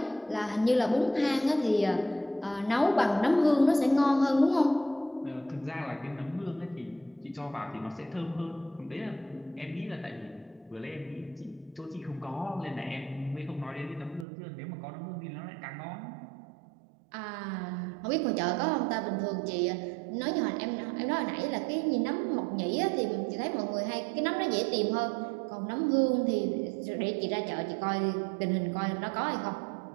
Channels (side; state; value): left; drops out; at 14.2 s